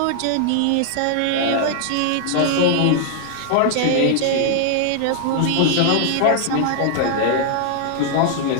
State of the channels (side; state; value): both; different; correlation 0.00